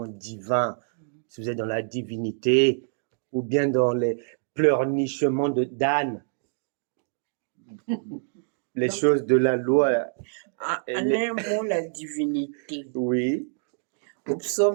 divin, si vous êtes dans la divinité ou bien dans les pleurnichements de d'âne. Les choses de la loi. En un mot, la divinité. Oui. Au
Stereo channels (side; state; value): left; silent; digital silence